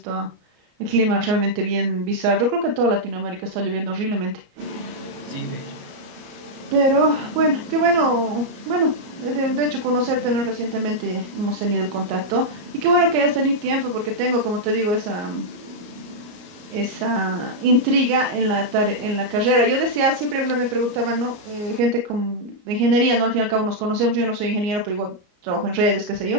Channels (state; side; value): late; left; 34 ms